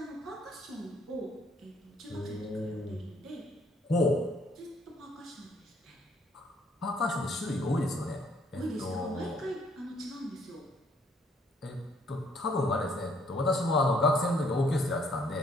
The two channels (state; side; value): normal; both; correlation 0.66